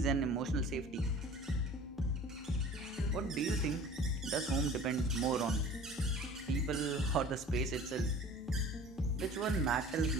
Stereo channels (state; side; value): normal; both; correlation 0.44